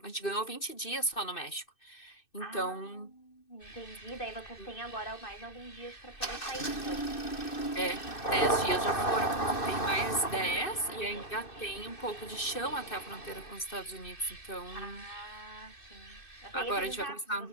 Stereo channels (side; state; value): right; late; 2.6 ms